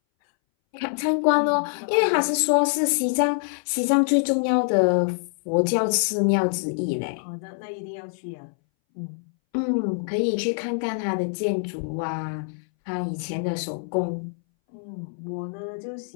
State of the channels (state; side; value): silent; right; 61 dB below the other